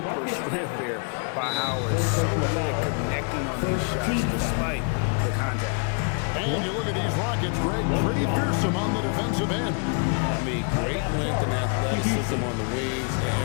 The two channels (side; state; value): right; quieter; 39.7 dB